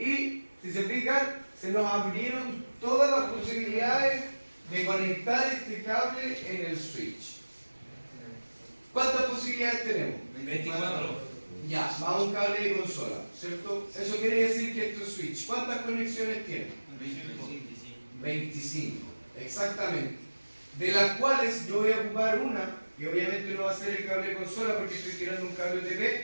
si se fijan, se nos abrieron todas las posibilidades de conectar este cable en el switch. ¿Cuántas posibilidades tenemos? 24. Ya, va un cable de consola, ¿cierto? Eso quiere decir que esto es switch. ¿Cuántas conexiones tiene? 25, exactamente. De las cuales yo voy a ocupar una, y obviamente no va a ser el cable de consola porque estoy tirando un cable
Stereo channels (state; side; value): inverted; both; correlation -1.00